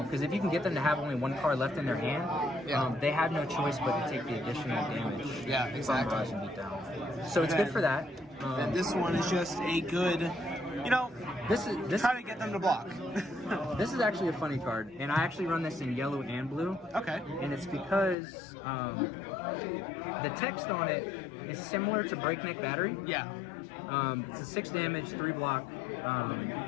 Because if you can get them to have only 1 card left in their hand, they have no choice but to take the additional damage from Barrage and Beatdown. So it's good for that. And this one is just a good, this try to get them to block. This is actually a funny card, and I actually run this in yellow and blue. Okay. And it's because the text on it is similar to Breakneck Battery. Yeah. It's a 6 damage, 3 block,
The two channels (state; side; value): drops out; right; at 18.2 s